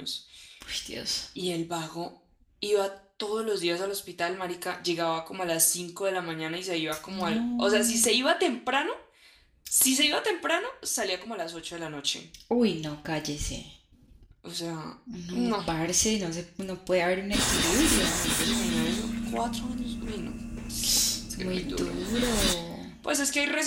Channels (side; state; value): both; identical; correlation 1.00